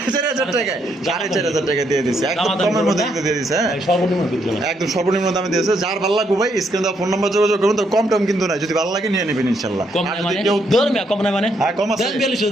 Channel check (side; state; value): both; normal; correlation 0.75